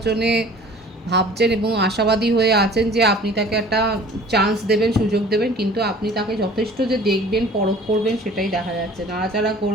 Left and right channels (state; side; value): normal; both; correlation 0.48